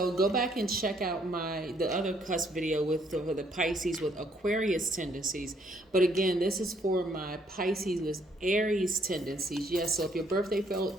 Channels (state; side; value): normal; both; correlation 0.68